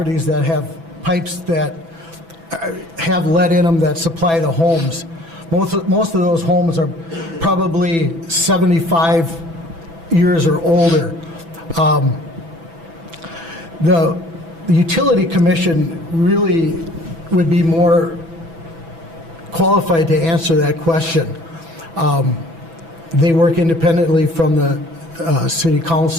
that have pipes that have lead in them that supply the homes. Most of those homes are probably 75 years or older. The utility commission really would be more qualified to answer that question. They work independently from the city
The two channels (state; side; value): late; left; 6.0 ms